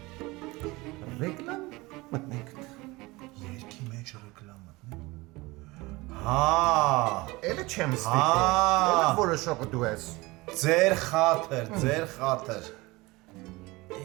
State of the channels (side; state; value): left; quieter; 22.2 dB